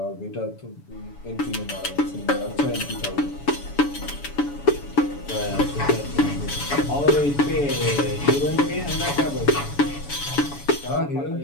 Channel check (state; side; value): late; right; 7.0 ms